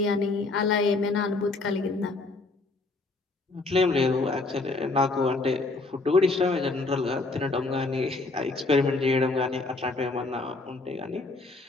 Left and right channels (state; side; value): quieter; right; 3.5 dB